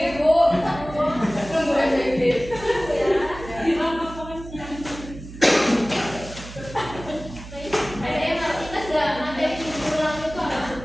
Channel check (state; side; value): noise; right; hum, 14 dB below the sound